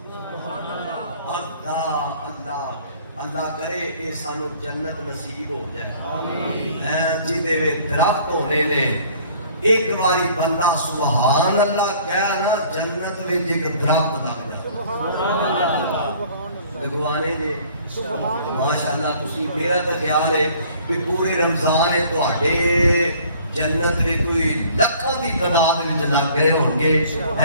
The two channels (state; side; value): inverted; both; correlation -0.54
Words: اللہ اللہ اللہ کرے اے سانو جنت نصیب ہو جائے آمین جدے وے درخت ہونے نے ایک باری بندہ سبحان اللہ کہہ نا جنت وچ ایک درخت لگ جائے لگوانے جے ماشاءاللہ تسی میرا تو خیال ہے کہ پورے رمضان ہے تواڈے جنت میں کوئی لکھاں دی تعداد وچ لگ گئے ہوں گے